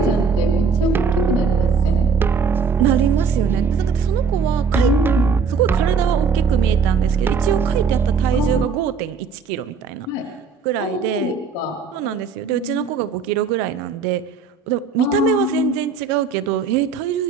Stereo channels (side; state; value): left; quieter; 5.3 dB